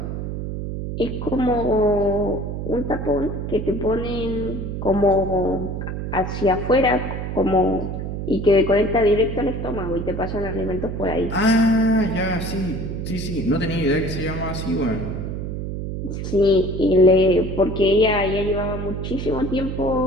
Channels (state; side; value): noise; right; hum, 5 dB below the sound